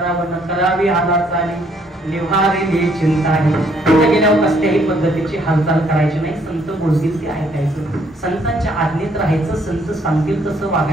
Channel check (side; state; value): both; normal; correlation 0.67